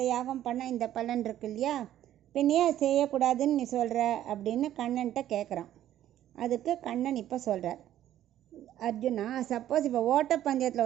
யாகம் பண்ணால் இந்த பலன் இருக்கு இல்லையா, பின்னையே அதை செய்யக்கூடாதுன்னு நீ சொல்கிற அப்படின்னு கண்ணன்ட்ட கேட்குறான். அதுக்கு கண்ணன் இப்போ சொல்கிறார், அர்ஜுனா, சப்போஸ் இப்போ ஓட்டப்பந்தயத்தில்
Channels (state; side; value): quieter; left; 12.2 dB